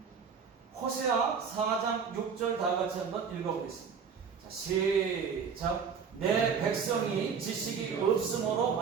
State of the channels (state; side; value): quieter; left; 6.3 dB